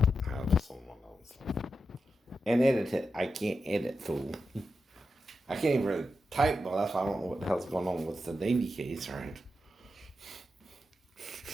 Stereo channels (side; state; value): both; normal; correlation 0.88